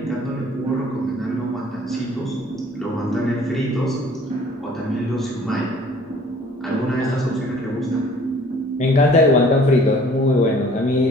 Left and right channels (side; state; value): both; normal; correlation 0.54